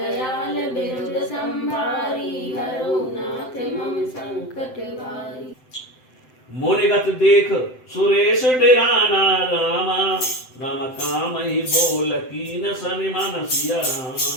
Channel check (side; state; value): right; late; 7.8 ms